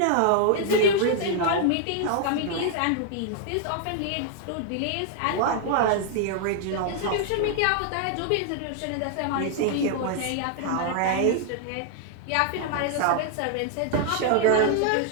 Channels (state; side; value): different; both; correlation 0.00